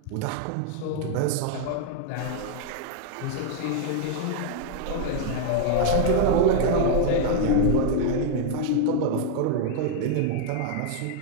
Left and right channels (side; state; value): both; different; correlation 0.00